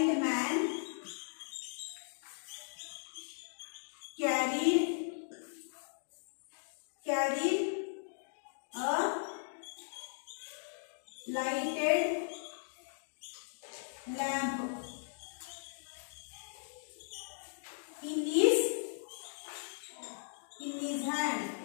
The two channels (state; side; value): silent; right; digital silence